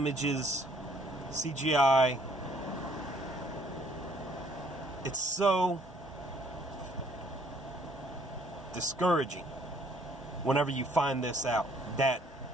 CGI. It's so discouraging whenever you find this out, that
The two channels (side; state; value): both; normal; correlation 0.63